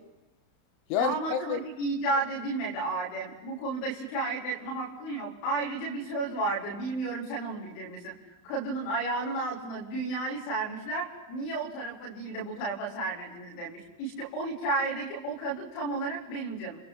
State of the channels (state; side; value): late; right; 35 ms